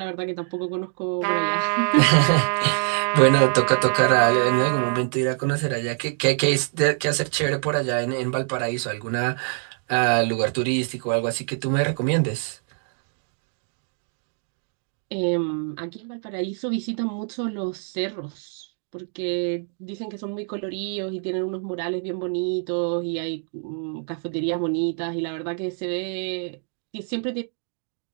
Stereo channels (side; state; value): left; silent; 60 dB below the other